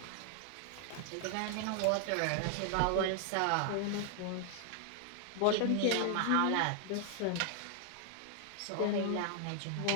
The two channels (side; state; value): both; different; correlation 0.00